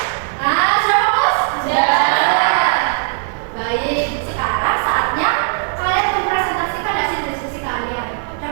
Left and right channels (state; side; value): silent; left; 62 dB below the other